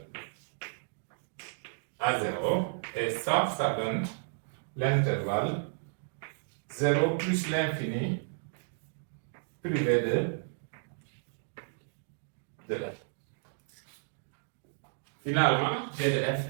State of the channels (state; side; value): silent; left; digital silence